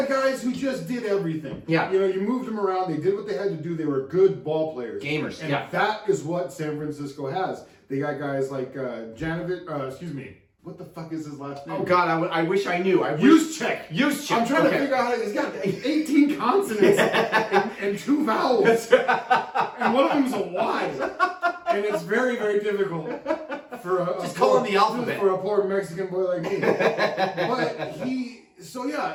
guys who just did everything. Yeah. You moved them around. They did what they had to do. They were good ball players. Gamers. And that is what San Francisco has. They got guys like what the fuck is his last name? Oh God, I wish I knew. Juszczyk. Juszczyk. I'm trying to figure out how he's got 18 consonants and 2 vowels, and one of them is a Y, and it's very, very difficult for just call him the alphabet for a poor Mexican boy like me. But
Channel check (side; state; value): both; identical; correlation 1.00